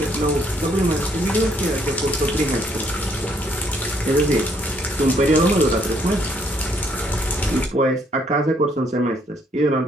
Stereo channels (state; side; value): normal; both; correlation 0.69